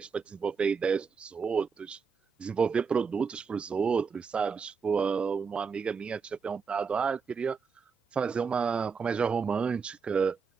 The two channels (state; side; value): quieter; left; 5.7 dB